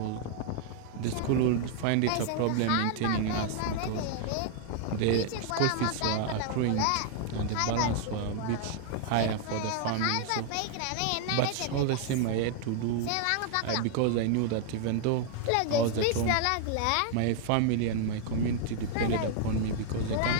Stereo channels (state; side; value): different; both; correlation 0.00